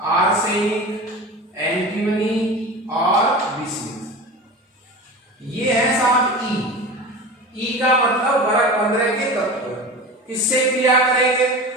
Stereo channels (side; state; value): both; normal; correlation 0.31